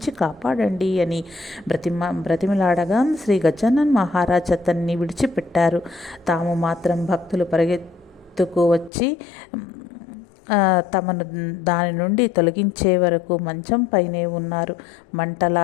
కాపాడండి అని బ్రతిమిలాడగా శ్రీ గజానన్ మహారాజ్ అతన్ని విడిచిపెట్టారు. తాము మాత్రం భక్తులు పరిగెత్తుకు వచ్చి తమను దాని నుండి తొలగించే వరకు మంచం పైనే ఉన్నారు.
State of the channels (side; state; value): right; drops out; at 8.9 s